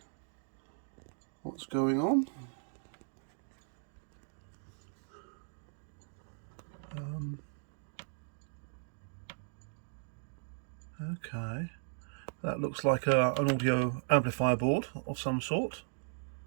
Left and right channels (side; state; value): left; silent; digital silence